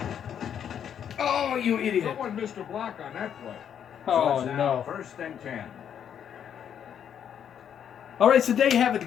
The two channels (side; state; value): right; quieter; 8.8 dB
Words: Oh, you idiot. Someone missed a block on that play. Oh, So it's now no. First and 10. All right, so there you have it,